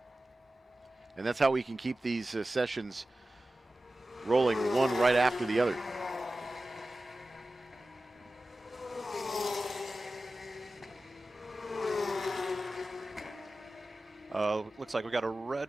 And that's how we can keep these sessions rolling one right after the other. Looks like we got a red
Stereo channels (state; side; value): normal; both; correlation 0.95